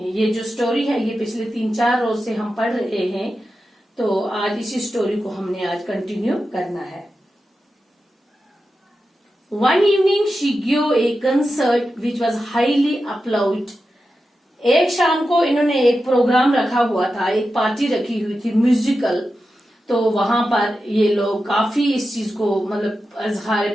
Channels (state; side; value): normal; both; correlation 0.91